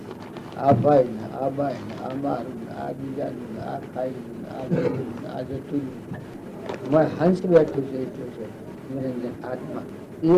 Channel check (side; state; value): both; identical; correlation 1.00